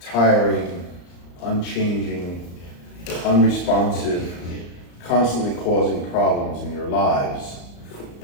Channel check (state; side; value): late; right; 34 ms